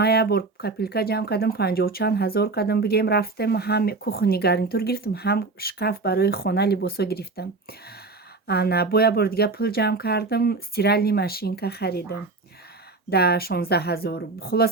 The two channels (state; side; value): quieter; left; 3.7 dB